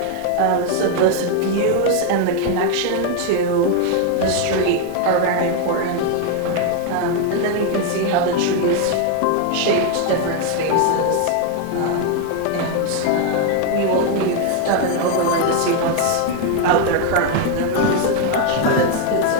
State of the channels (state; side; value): different; both; correlation 0.01